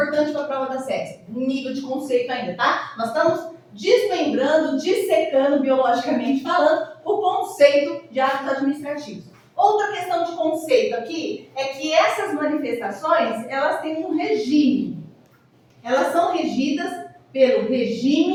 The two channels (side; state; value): both; identical; correlation 1.00